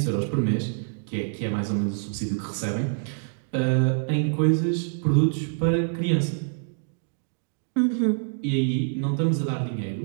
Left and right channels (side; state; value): left; silent; digital silence